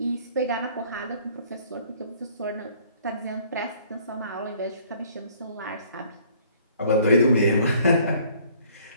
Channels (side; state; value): both; inverted; correlation -0.58